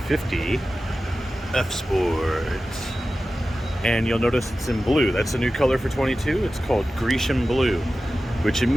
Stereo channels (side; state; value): both; normal; correlation 0.94